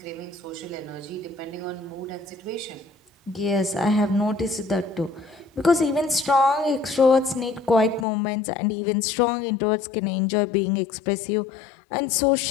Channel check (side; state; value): right; drops out; at 8.1 s